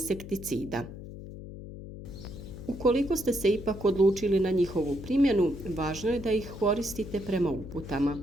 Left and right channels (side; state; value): left; noise; hum, 12 dB below the sound